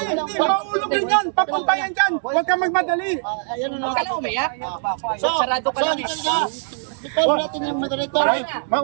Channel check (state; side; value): silent; left; digital silence